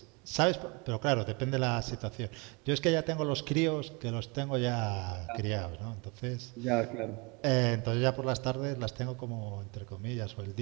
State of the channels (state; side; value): quieter; left; 29.3 dB